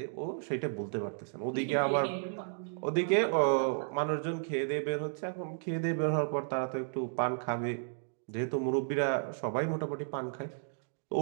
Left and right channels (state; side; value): silent; left; digital silence